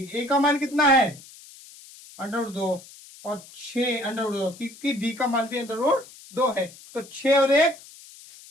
ए का मान कितना है अंडर रूट 2 और 6 अंडर रूट 2, क्योंकि डी का मान भी अंडर रूट 2 है, तो 6 और 1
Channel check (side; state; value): left; noise; hiss, 20 dB below the sound